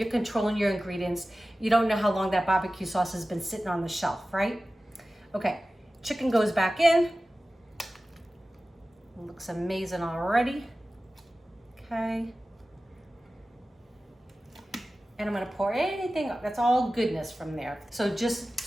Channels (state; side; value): normal; both; correlation 0.96